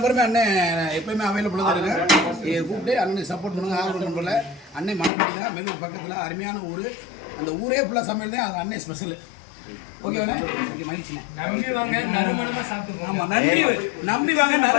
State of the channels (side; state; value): right; drops out; at 5.1 s